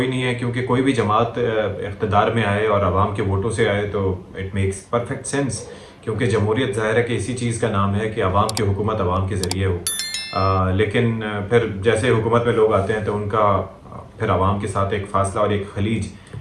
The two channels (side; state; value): both; identical; correlation 1.00